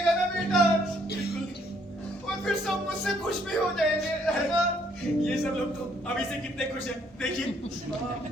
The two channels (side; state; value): both; normal; correlation 0.67